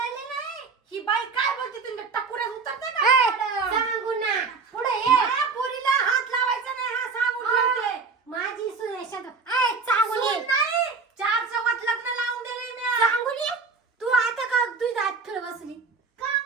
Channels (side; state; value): left; quieter; 4.8 dB